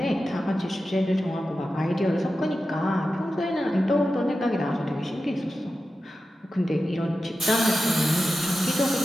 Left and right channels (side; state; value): both; normal; correlation 0.92